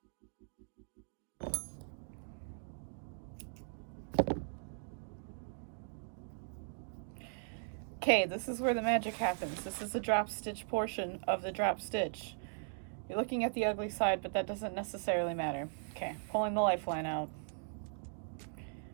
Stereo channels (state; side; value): silent; left; digital silence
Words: Okay, this is where the magic happens. This is the drop stitch portion of the drop stitch. You're looking at the ugly side, but that doesn't necessarily matter. Okay, pulling the lifeline out.